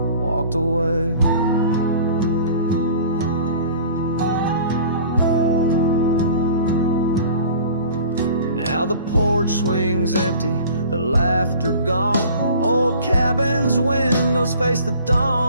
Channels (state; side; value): inverted; both; correlation -0.46